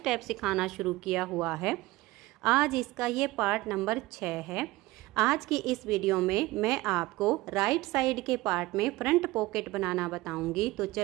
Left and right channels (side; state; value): left; quieter; 19.4 dB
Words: सिखाना शुरू किया हुआ है। आज इसका ये पार्ट नंबर 6 है। आज की इस वीडियो में मैं आपको राइट साइड के पार्ट में फ्रंट पॉकेट बनाना बताऊंगी। तो